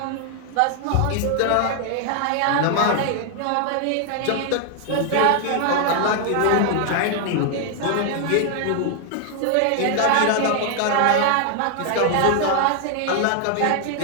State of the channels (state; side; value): different; both; correlation 0.00